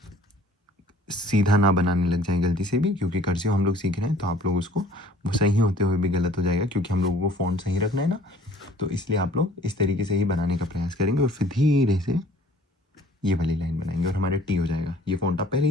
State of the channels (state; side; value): normal; both; correlation 0.53